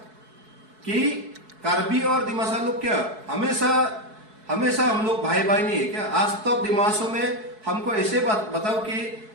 कि कार्बी और दिमासा लोग क्या हमेशा हम लोग भाई भाई नहीं है क्या? आज तक दिमासों में हमको ऐसे बात बताओ कि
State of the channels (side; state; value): left; late; 4.7 ms